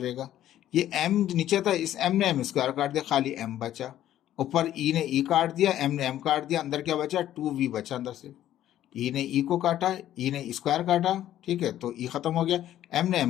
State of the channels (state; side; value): quieter; right; 12.3 dB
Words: ये एम नीचे था, इस एम ने एम स्क्वायर काट दिया, खाली एम बचा, ऊपर ई ने ई काट दिया, एम ने एम काट दिया, अंदर क्या बचा, 2 वी बचा अंदर से, ई ने ई को काटा, ई ने स्क्वायर काटा, ठीक है, तो ई खत्म हो गया, एम ने